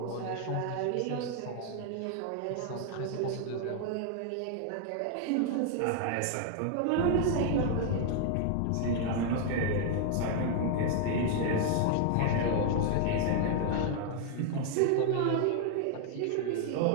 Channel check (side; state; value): both; different; correlation 0.00